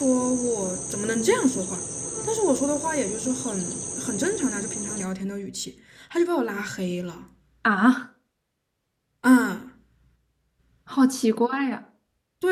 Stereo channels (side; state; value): both; identical; correlation 1.00